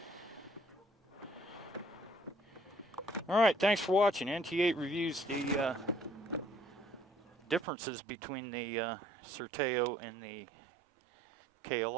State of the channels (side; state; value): left; drops out; at 7.7 s